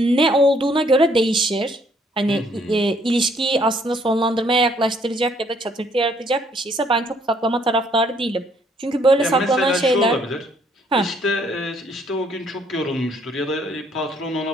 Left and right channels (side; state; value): both; normal; correlation 0.66